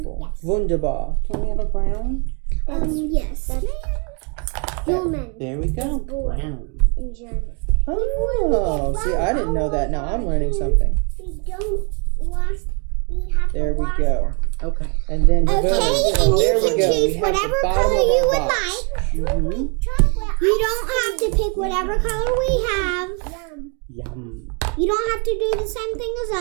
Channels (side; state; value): left; quieter; 35.9 dB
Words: Wunderbar. Can we have a brown? Yes. Human There we go. boy. Brown. in German. Oh, see, I didn't know that. Now I'm learning something. We don't wash. We have There to we wash go. Okay. And then Okay, boom. and There you we can go. We choose have the whatever bottom color of you our would box. like. Mm-hmm. Chocolate. You don't have to pick whatever color we have. Yum. Yum. You don't have to do the same thing